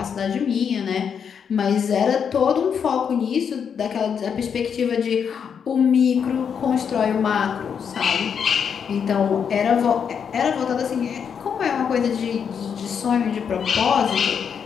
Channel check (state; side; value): quieter; right; 7.2 dB